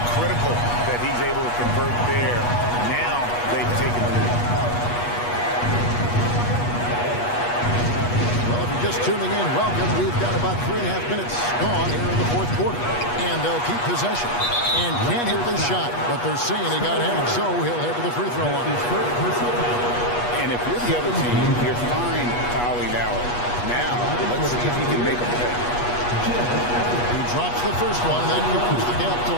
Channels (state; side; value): late; right; 8.3 ms